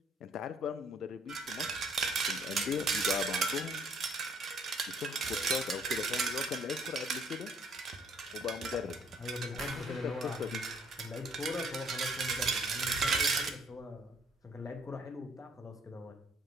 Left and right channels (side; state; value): both; normal; correlation 0.63